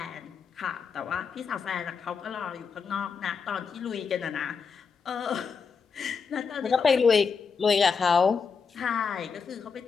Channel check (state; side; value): quieter; right; 5.7 dB